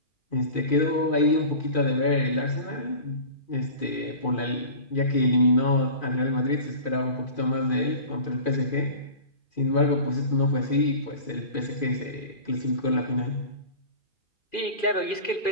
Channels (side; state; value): right; late; 2.4 ms